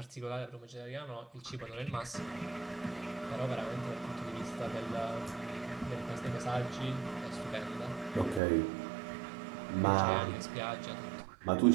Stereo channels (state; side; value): drops out; left; at 8.4 s